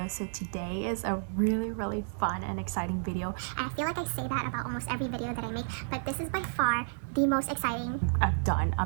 So today is a really fun and exciting video. And I feel like I say that about almost every video that I make, but this is by far the most exciting I've done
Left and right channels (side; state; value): left; silent; digital silence